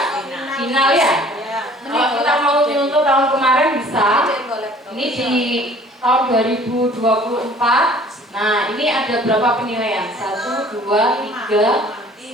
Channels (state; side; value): normal; both; correlation 0.52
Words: final ya. Kalau kita mau nyuntuk tahun kemarin bisa. Ini di tahun 2024. Nah, ini ada berapa penilaian? 1, 2, 3,